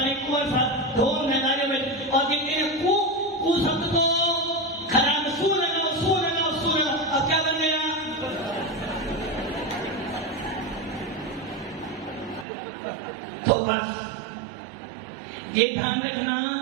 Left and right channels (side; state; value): left; drops out; at 12.5 s